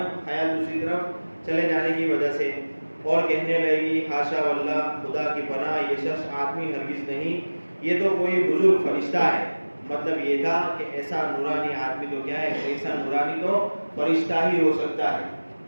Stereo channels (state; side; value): inverted; both; correlation -1.00